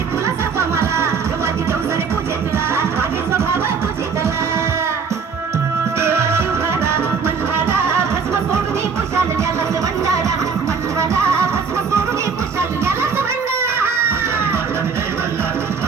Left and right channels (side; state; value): left; quieter; 5.7 dB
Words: तुला सर्व मला